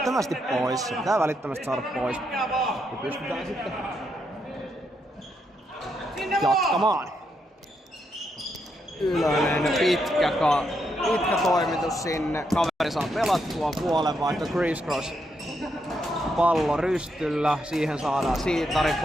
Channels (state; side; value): normal; both; correlation 0.80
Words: pois. Se pitää välittömästi saada pois. Ja pystytään sitten jatkamaan. Ylönen pitkä toimitus sinne. Kaveri saa pelattua puolenvaihto crisscross. Pallo rystyllä, siihen saadaan Siitari